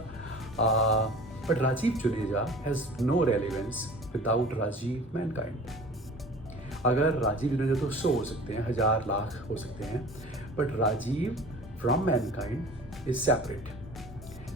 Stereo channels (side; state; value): both; normal; correlation 0.42